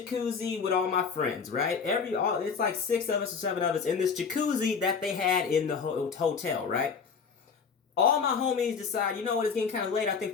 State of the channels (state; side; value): quieter; right; 5.9 dB